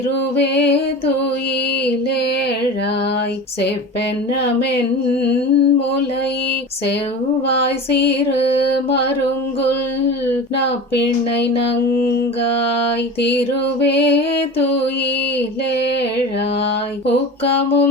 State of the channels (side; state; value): both; normal; correlation 0.32